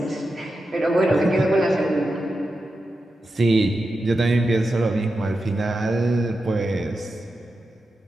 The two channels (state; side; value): normal; both; correlation 0.90